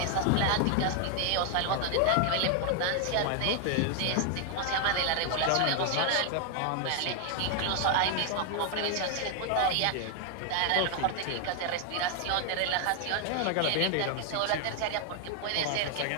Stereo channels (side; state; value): both; different; correlation 0.00